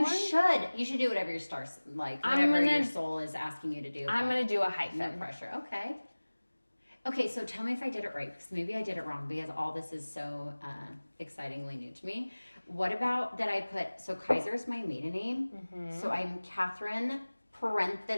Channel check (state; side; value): inverted; both; correlation -1.00